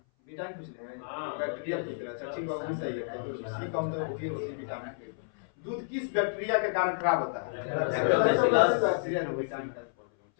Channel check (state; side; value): silent; right; 57 dB below the other